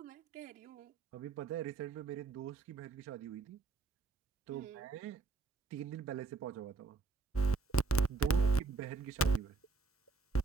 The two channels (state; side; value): quieter; left; 3.9 dB